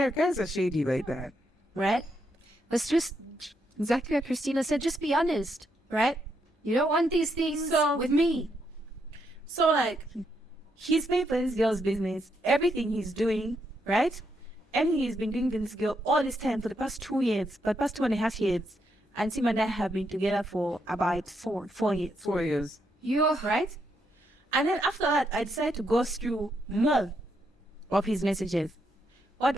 guys are shady like that. right? Let's just, exactly what Christina said, just be honest, right? You don't want these things So- with me. So like, he's paying for this girl's business, everything he's doing, right? And he's been doing this girl all this time for the past 2 years, but past 2.5 years. And Tim and I have been together for about 4 years. 4 years. You're Right? And then after that, I decided to go through more of his messages. What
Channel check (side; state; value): both; normal; correlation 0.78